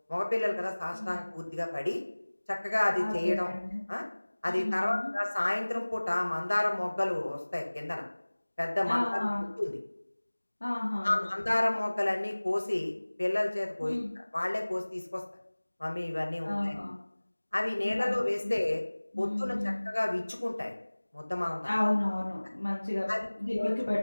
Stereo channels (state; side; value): inverted; both; correlation -1.00